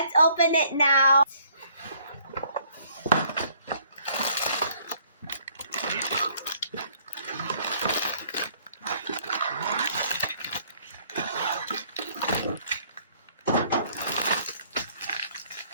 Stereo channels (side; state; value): both; inverted; correlation -0.62